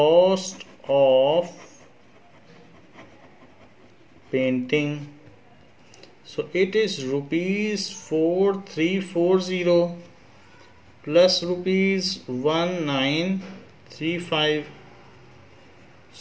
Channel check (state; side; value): identical; both; correlation 1.00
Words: of painting. So it is rupees 4340 plus rupees 1935.